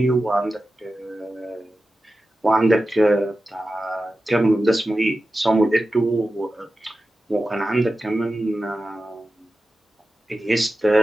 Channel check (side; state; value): both; normal; correlation 0.93